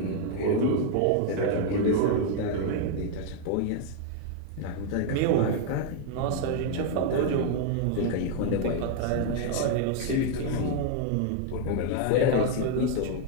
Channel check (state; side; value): different; both; correlation 0.00